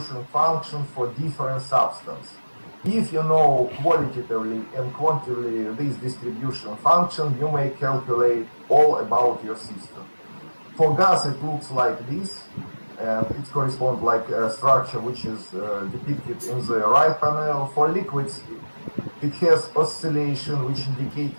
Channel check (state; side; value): inverted; both; correlation -1.00